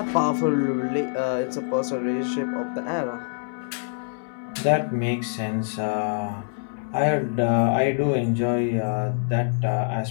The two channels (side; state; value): right; silent; digital silence